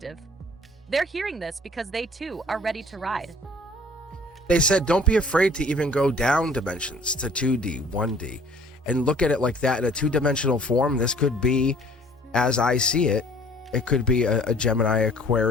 They're hearing this because they too are ready to ride. They said, don't be afraid to even go down dimensions to 2D, 1D, and look at it like that in a two-dimensional form. This could be, as I see it, it could be a Gemini,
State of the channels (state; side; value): normal; both; correlation 0.53